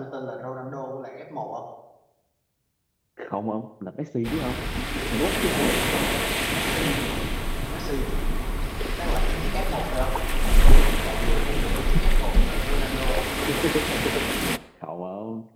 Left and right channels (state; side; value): identical; both; correlation 1.00